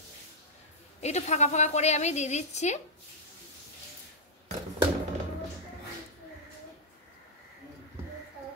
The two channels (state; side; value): normal; both; correlation -0.06